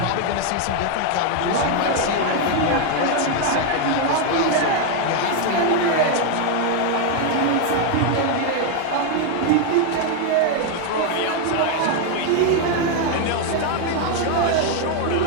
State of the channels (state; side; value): different; both; correlation 0.01